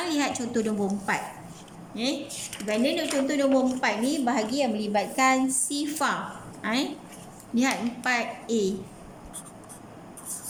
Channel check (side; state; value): both; identical; correlation 1.00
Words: lihat contoh nombor 4. Benda contoh nombor 4 ni bahagi yang melibatkan sifar. Lihat 4A.